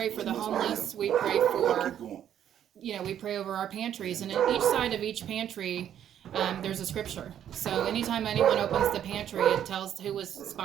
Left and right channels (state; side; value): quieter; left; 10.1 dB